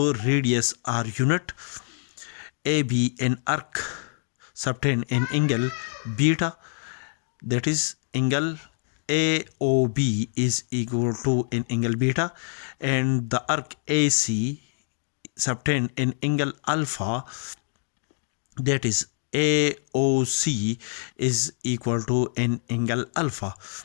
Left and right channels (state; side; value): silent; right; digital silence